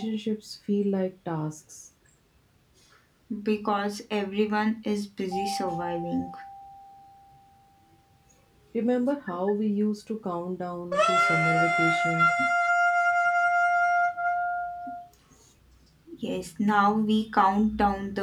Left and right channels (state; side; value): identical; both; correlation 1.00